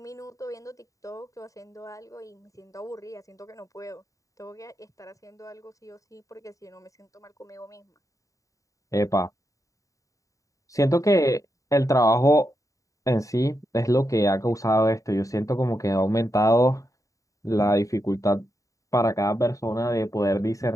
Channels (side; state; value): right; late; 0.16 ms